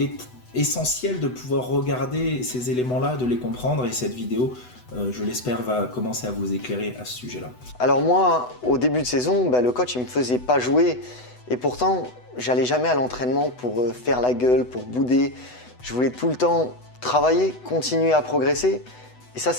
est essentiel de pouvoir regarder ces éléments-là, de les comprendre, et cette vidéo, je l'espère, va commencer à vous éclairer à ce sujet-là. Alors moi, au début de saison, le coach il me faisait pas jouer, et pourtant j'allais jamais à l'entraînement pour faire la gueule, pour bouder. Je voulais tout le temps travailler, continuer à progresser, et ça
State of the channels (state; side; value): late; right; 8.0 ms